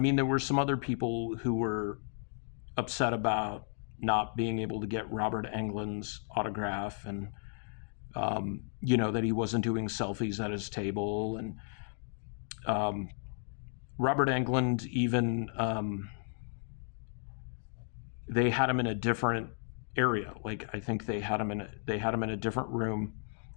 there were some other people who were upset about not being able to get Robert Englund's autograph, and you know, that he wasn't doing selfies at his table. And Robert Englund even, they had him in a different area. Like, I think they had him in a different room,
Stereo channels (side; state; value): right; silent; 55 dB below the other